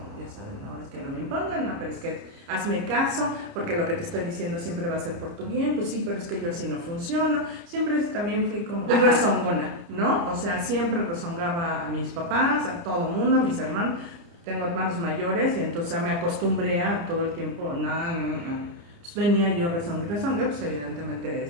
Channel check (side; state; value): left; late; 29 ms